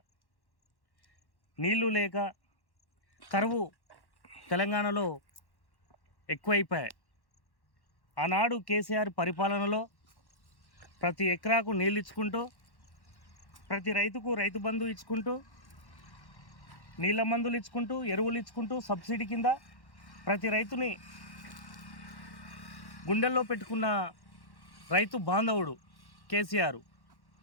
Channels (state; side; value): late; right; 1.1 ms